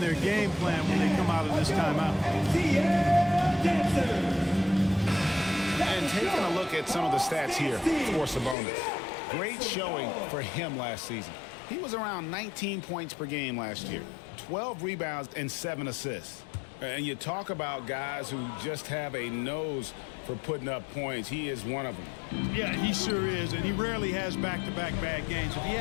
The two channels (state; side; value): drops out; right; at 8.6 s